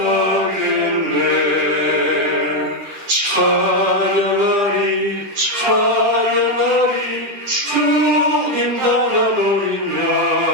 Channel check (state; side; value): late; left; 10 ms